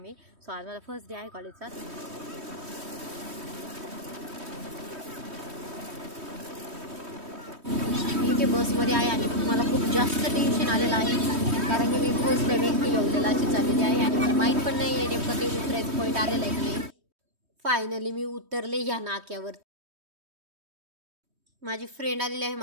मी. सो आज माझा फर्स्ट डे आहे कॉलेजचा. मी इथे बसमध्ये आहे आणि मला खूप जास्त टेन्शन आलेलं आहे कारण की मी फर्स्ट टाइम एकटी येऊलेला अशी चाललेली आहे आणि मला माहीत पण नाही आहे नेमकं ते उतरायचं पॉईंट आलेलं आहे की नाही. फायनली मी उतरले ह्या नाक्यावर. माझी फ्रेंड आलेली आहे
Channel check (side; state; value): left; late; 3.2 ms